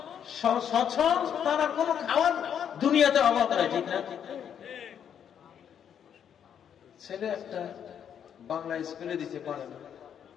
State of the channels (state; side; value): quieter; right; 8.6 dB